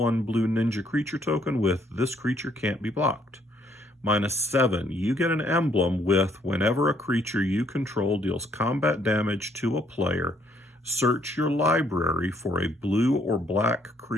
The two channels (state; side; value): normal; both; correlation 0.67